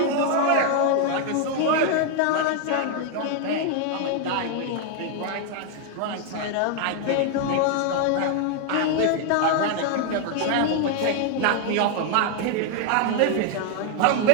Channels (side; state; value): both; different; correlation 0.00